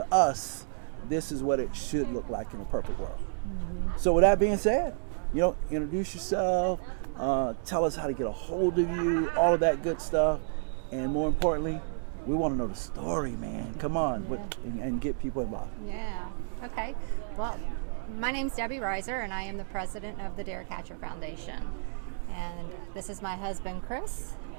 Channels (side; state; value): left; silent; 57 dB below the other